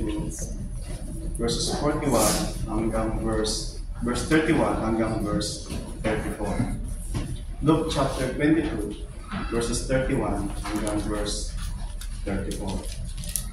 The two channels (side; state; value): both; identical; correlation 1.00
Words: verses 41 hanggang verse 31 hanggang verse 34. Luke chapter 22, verses 31 hanggang verse 34.